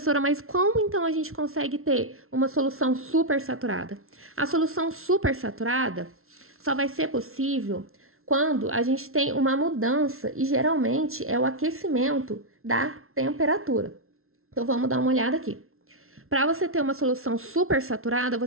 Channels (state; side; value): late; left; 0.62 ms